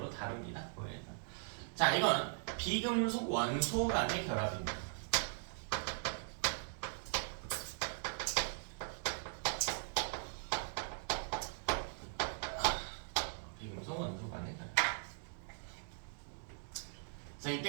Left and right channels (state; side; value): silent; left; digital silence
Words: 다룹니다. 자, 이건 비금속 원소 간의 결합입니다. 비금속 원소 간의 결합. 자,